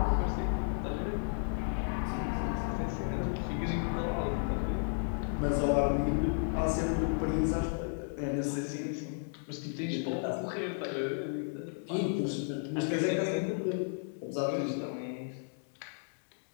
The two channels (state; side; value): silent; right; digital silence